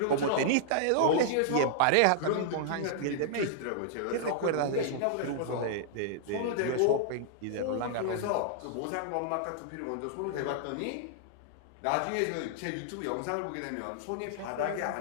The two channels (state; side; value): different; both; correlation -0.01